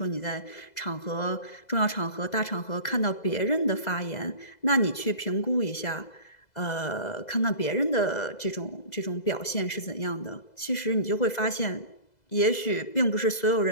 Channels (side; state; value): right; late; 2.0 ms